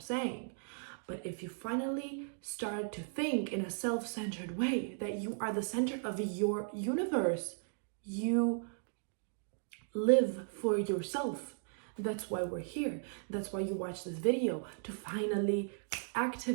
saying. But if you finally start to think in a self-centered way that you are the center of your universe, you live for yourself. That's why we're here. That's why you watch this video, to finally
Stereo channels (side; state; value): left; silent; digital silence